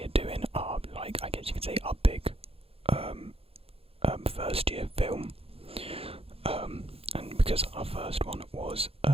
doing our, like, I guess you could say, our big first year film. And because our first one was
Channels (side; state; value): left; late; 0.28 ms